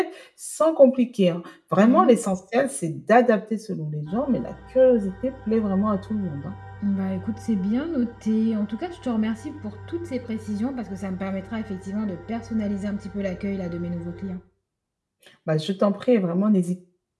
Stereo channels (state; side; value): identical; both; correlation 1.00